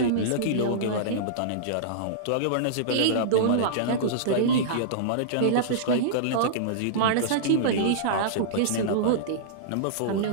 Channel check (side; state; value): both; different; correlation -0.02